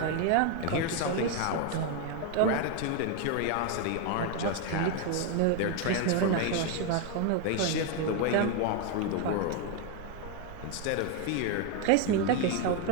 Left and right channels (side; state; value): both; different; correlation 0.01